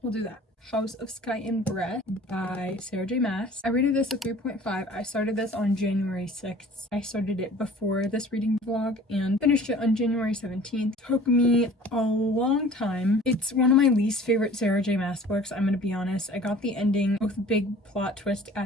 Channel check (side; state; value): both; normal; correlation 0.47